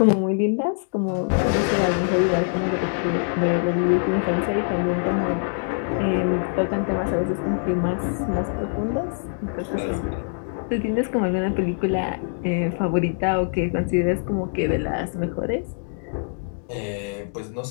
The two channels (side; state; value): right; silent; digital silence